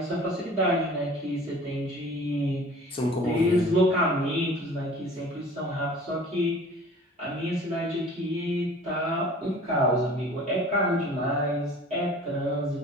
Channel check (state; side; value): normal; both; correlation 0.46